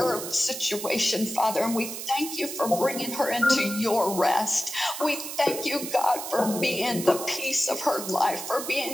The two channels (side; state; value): right; noise; hiss, 7 dB below the sound